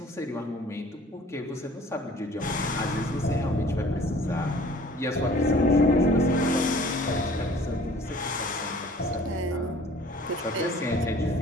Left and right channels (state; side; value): normal; both; correlation 0.51